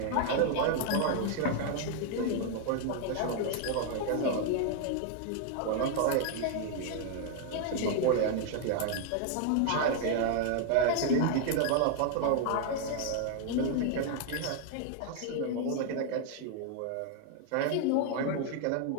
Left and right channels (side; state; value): both; different; correlation 0.00